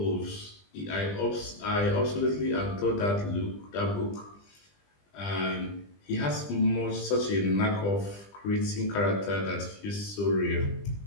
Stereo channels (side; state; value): right; late; 20 ms